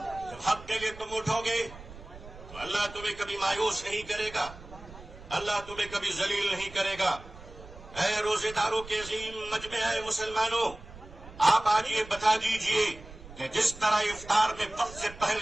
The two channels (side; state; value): right; noise; rumble, 17 dB below the sound